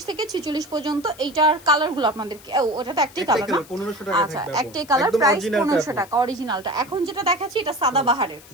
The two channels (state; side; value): noise; left; hiss, 22 dB below the sound